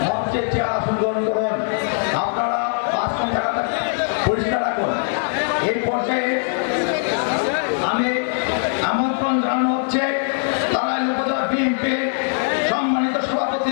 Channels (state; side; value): silent; right; digital silence